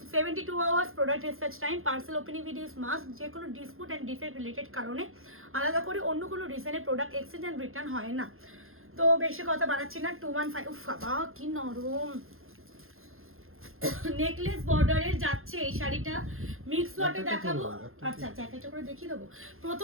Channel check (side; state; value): left; late; 0.61 ms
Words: 72 hours product research time, parcel opening videos must. যে কোনো ডিসপুট অ্যান্ড ডিফেক্ট রিলেটেড কারণে আলাদা করে অন্য কোনো রিজনে প্রোডাক্ট এক্সচেঞ্জ অ্যান্ড রিটার্ন হয় না। তো বেশি কথা বাড়াচ্ছি না, 215। উফ বাবা কি নরম নেকলেস বর্ডারের যাচ্ছে এই শাড়িটা, মিক্স লটে দেখাবো। আচ্ছা আচ্ছা, একটা করে দেখিয়ে দেবো।